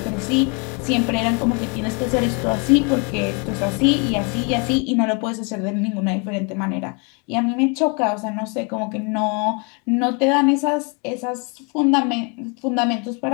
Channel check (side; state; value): right; quieter; 34.1 dB